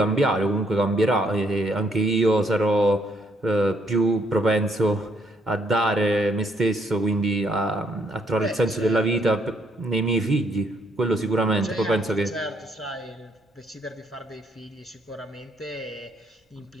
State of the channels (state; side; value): normal; both; correlation 0.70